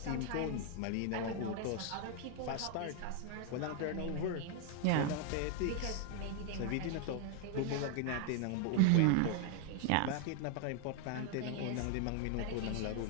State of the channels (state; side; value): different; both; correlation 0.00